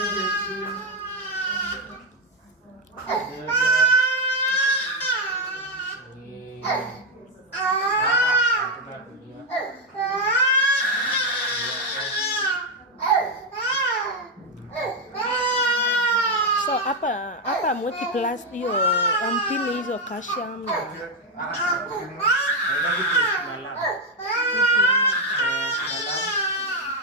So hapa mweki plus hiyo ampini hizo calcium na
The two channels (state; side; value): normal; both; correlation 0.05